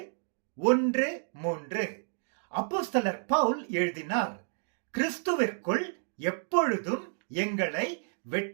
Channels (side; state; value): left; silent; digital silence